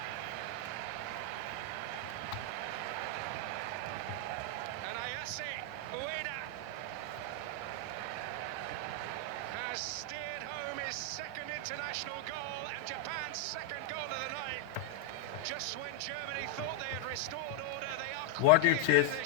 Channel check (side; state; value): both; different; correlation 0.00